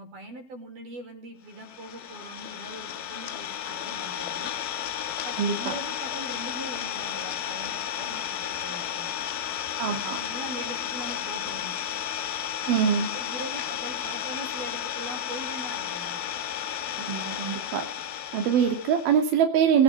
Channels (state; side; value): late; left; 12 ms